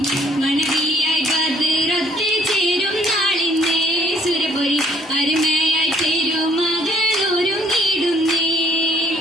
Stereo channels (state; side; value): normal; both; correlation 0.62